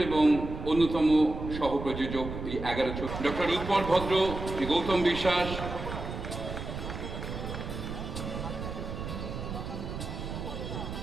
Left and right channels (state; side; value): noise; right; rumble, 7 dB below the sound